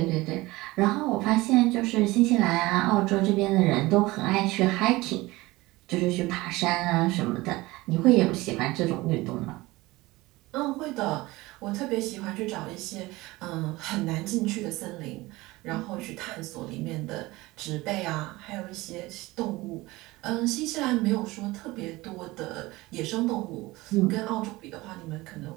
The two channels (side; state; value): left; quieter; 20.4 dB